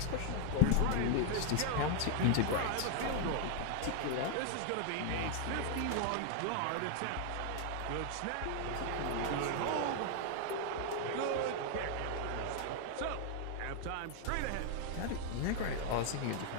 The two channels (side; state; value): both; different; correlation 0.00